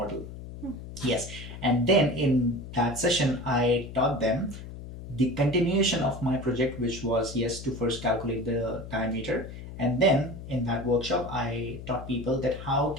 Yes. And then in that session, I taught them the continuation of my project, which was, yes, to first calculate the diameter. And then in that workshop, I taught people that how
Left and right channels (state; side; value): noise; left; hum, 12 dB below the sound